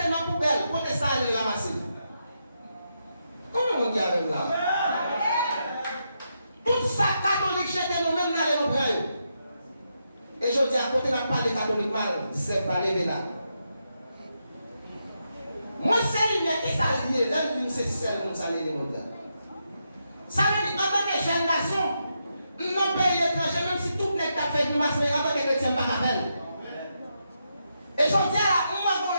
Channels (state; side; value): inverted; both; correlation -0.83